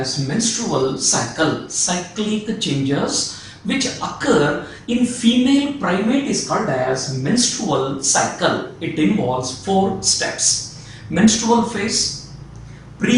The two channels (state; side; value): identical; both; correlation 1.00